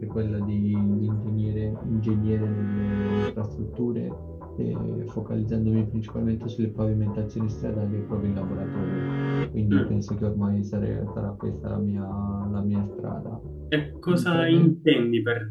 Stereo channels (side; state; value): both; identical; correlation 1.00